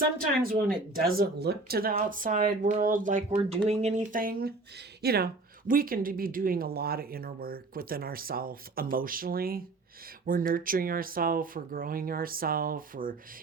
when it doesn't look to the outside world like we're doing anything, you know, we can be doing a lot of inner work within ourselves emotionally. We're nurturing ourselves, we're growing ourselves, we're,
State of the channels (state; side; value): quieter; left; 3.3 dB